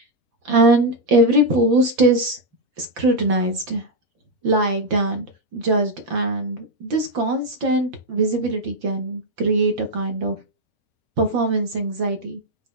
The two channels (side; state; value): left; late; 5.9 ms